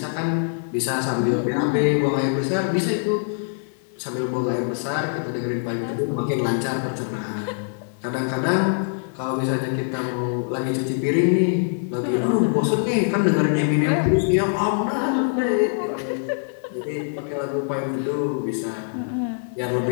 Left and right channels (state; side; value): silent; right; digital silence